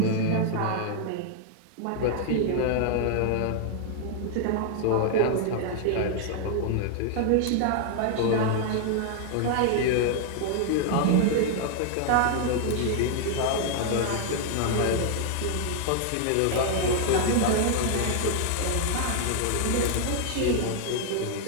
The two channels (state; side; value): different; both; correlation -0.01